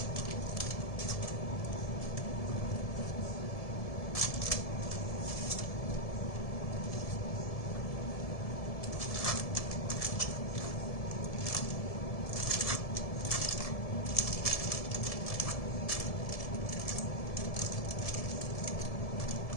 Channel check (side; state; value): right; late; 1.7 ms